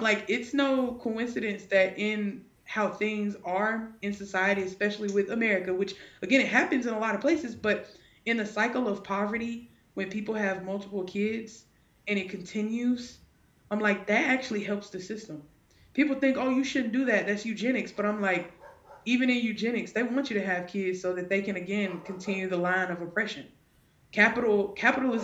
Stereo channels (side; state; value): both; identical; correlation 1.00